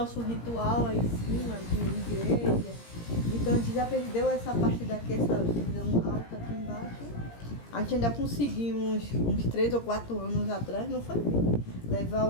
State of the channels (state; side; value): late; right; 17 ms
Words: ritual aí em cima de igreja. Então a gente já perdeu essa parte daqui, essa visão alta aqui embaixo. A gente ainda conseguimos, uns 3 ou 4 anos atrás, não foi bem, levar